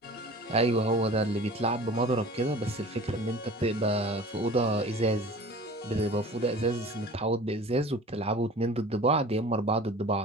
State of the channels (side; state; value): both; normal; correlation 0.41